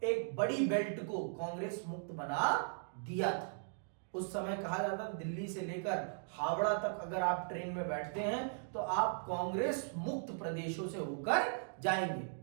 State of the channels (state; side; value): silent; left; digital silence